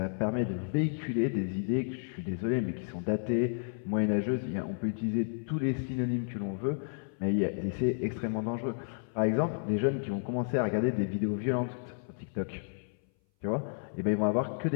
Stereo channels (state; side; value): silent; right; 57 dB below the other